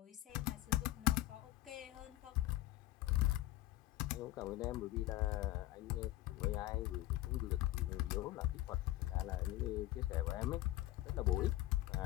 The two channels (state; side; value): quieter; right; 16.7 dB